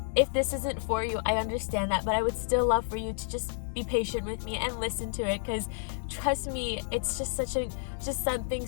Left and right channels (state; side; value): silent; right; 58 dB below the other